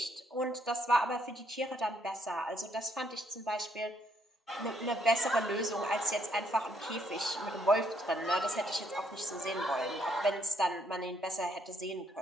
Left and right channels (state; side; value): normal; both; correlation 0.70